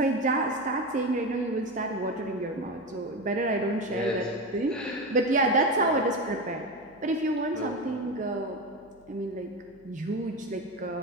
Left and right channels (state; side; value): noise; right; hum, 30 dB below the sound